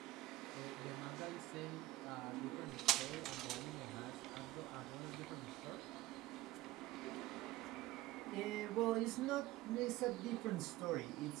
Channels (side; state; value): left; quieter; 17.1 dB